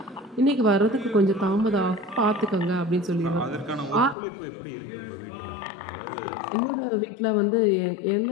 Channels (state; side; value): drops out; right; at 4.2 s